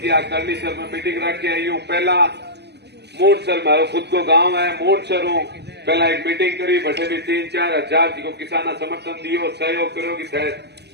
करनी सर में मीटिंग रख के आई हूँ। पहला मोटसर मारो खुद को गांव है, मोटसर हूँ, पहला एक मीटिंग करी, बटे भी 3-4 हजार जी को किसाना समर्थन दियो, सहयोग करो कि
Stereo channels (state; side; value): late; left; 0.49 ms